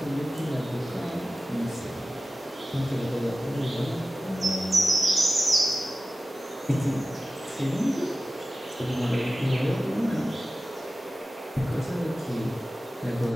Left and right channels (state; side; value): normal; both; correlation 0.95